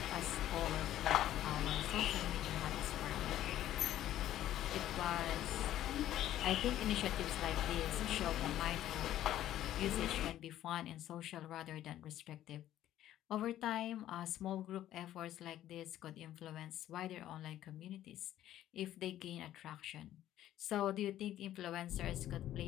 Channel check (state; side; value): quieter; right; 12.7 dB